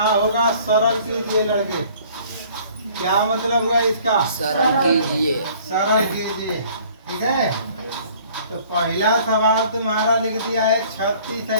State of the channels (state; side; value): inverted; both; correlation -0.54